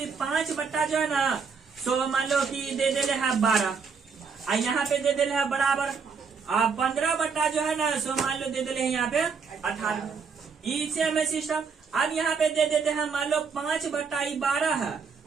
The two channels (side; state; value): left; quieter; 5.6 dB